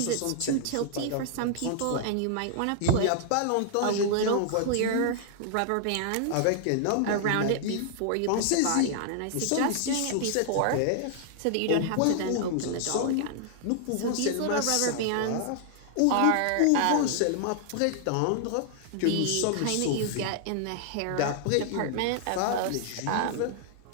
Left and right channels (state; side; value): different; both; correlation -0.01